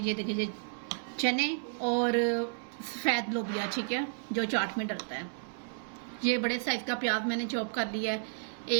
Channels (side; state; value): left; silent; 56 dB below the other